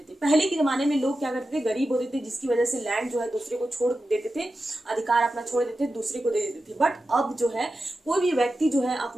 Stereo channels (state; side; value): normal; both; correlation 0.92